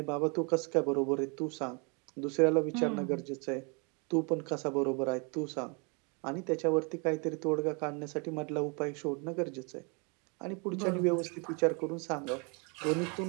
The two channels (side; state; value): left; quieter; 33.5 dB